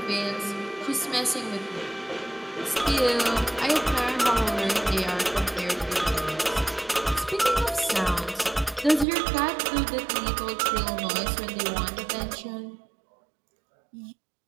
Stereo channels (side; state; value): left; drops out; at 9.1 s